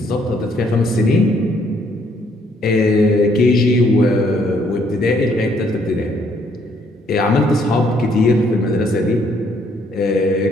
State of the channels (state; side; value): normal; both; correlation 0.68